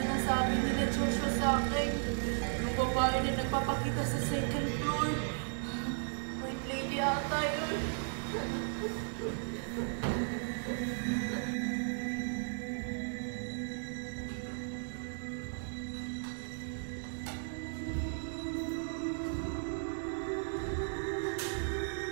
sinasabi nila Joshua sa akin. Yung babae na nagpapakita sa second floor. White lady ata yun.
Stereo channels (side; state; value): left; silent; digital silence